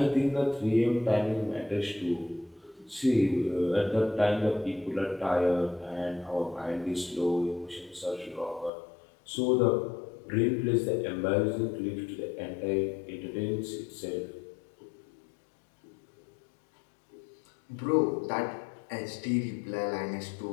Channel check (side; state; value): right; drops out; at 8.7 s